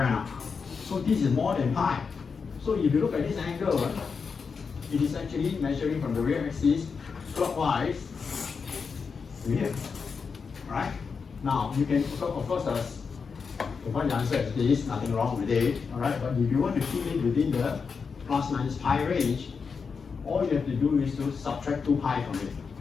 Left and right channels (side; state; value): right; quieter; 5.5 dB